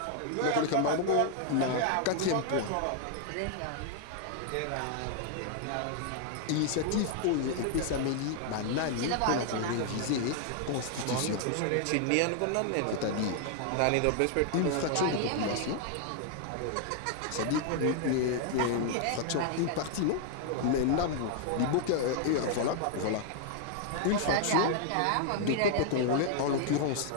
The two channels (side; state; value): both; different; correlation 0.00